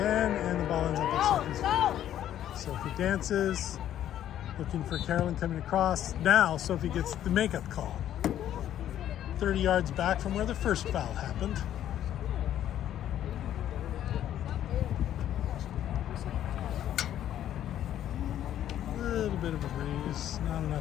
and the ball ends up at Sophie's feet. Sophie dances, looking for Carolyn coming across. Now Sophie gets the makeup call. 30 yards back from where the first foul happened. A little bit of a breeze, not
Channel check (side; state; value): right; quieter; 11.3 dB